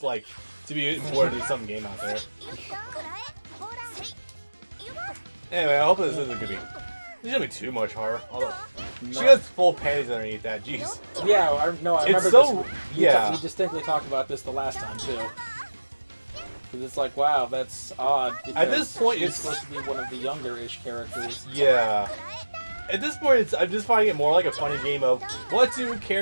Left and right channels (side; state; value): both; inverted; correlation -1.00